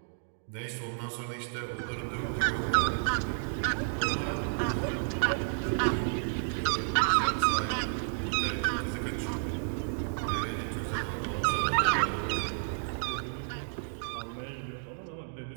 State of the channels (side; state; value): left; silent; digital silence